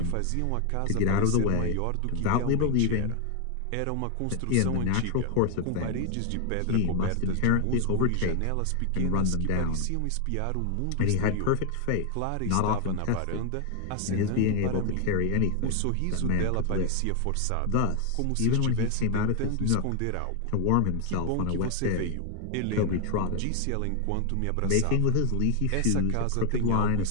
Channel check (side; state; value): both; different; correlation 0.01